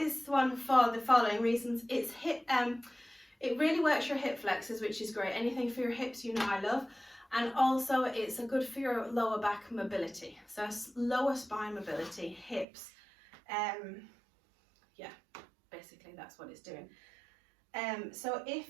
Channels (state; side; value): drops out; left; at 12.7 s